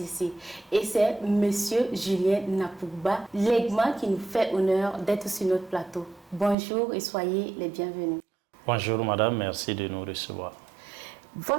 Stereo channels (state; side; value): drops out; left; at 6.6 s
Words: Et c'est Monsieur Julien Napouba Legma qui nous fait honneur d'être sur notre plateau. Bonjour et soyez les bienvenus. Bonjour madame, merci de nous recevoir.